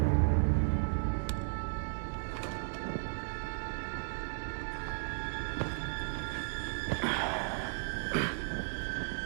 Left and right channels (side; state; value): left; silent; digital silence